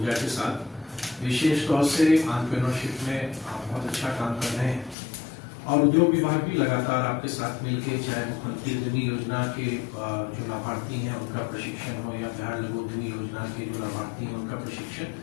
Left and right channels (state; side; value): drops out; right; at 5.0 s